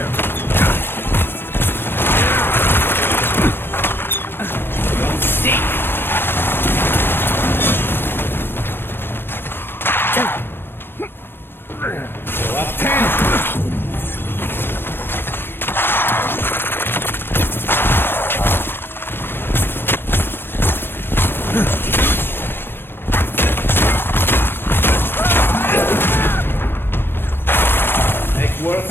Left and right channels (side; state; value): right; late; 0.10 ms